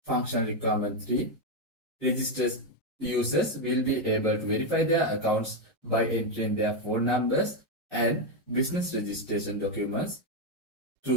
Functional requirement 3. Registered users will be able to verify their accounts by entering their phone numbers and business registration documents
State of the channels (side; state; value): both; normal; correlation 0.05